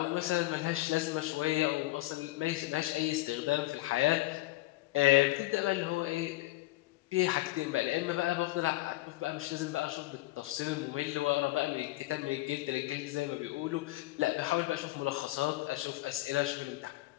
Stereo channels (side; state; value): right; quieter; 18.2 dB